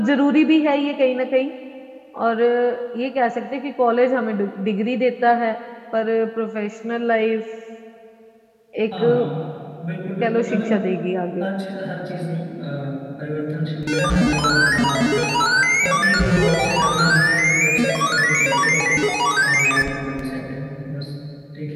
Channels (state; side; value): identical; both; correlation 1.00